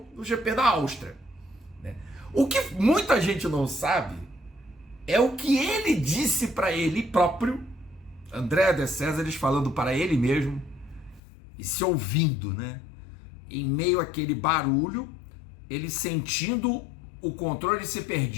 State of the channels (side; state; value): right; drops out; at 11.2 s